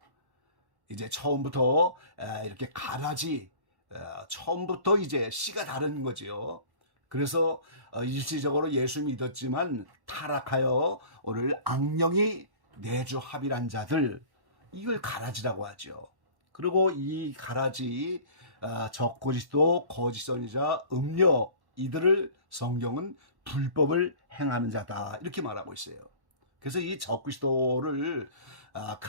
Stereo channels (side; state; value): left; late; 1.1 ms